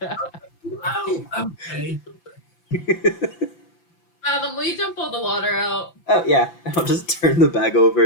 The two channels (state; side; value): late; right; 5.9 ms